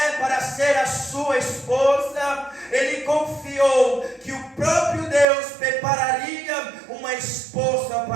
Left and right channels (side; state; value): left; drops out; at 5.2 s